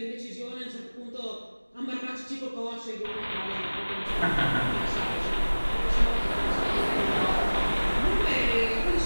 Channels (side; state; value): both; inverted; correlation -1.00